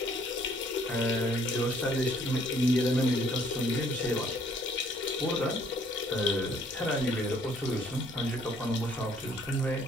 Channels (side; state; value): both; normal; correlation 0.62